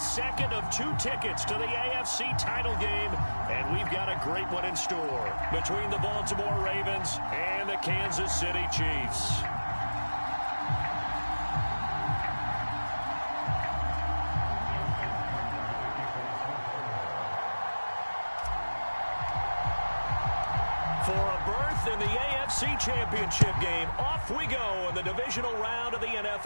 of 2 tickets to the AFC title game, and we've got a great one in store between the Baltimore Ravens and the Kansas City Chiefs. In the AFC Championship game, off we go in the divisional round of the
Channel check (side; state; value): both; inverted; correlation -1.00